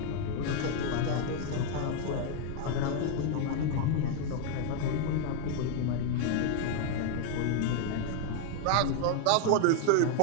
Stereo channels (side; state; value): both; different; correlation 0.00